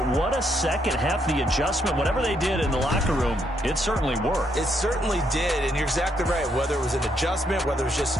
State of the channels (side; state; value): both; normal; correlation 0.75